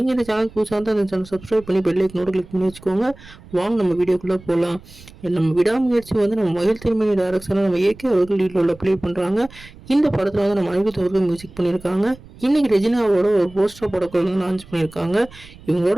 இந்த சேனல் புதுசாக இருந்தால் அந்த சேனல் சப்ஸ்கிரைப் பண்ணி பெல் ஐக்கனோட கிளிக் பண்ணி வச்சுக்கோங்க. வாங்க நம்ம வீடியோக்குள்ளே போகலாம். நம்ம விடாமுயற்சி வந்து நம்ம மகிழ் திருமணி டைரக்ஷனில் நம்ம ஏகே அவர்கள் லீடில் ப்ளே பண்ணுறாங்க. இந்த படத்தில் வந்து நம்ம அனிருத் அவர்கள் மியூசிக் பண்ணியிருக்காங்க. இன்னைக்கு ரெஜினாவோட ஒரு போஸ்டர் படக்குள்ள வந்து லான்ச் பண்ணியிருக்காங்க.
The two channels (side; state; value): right; noise; rumble, 21 dB below the sound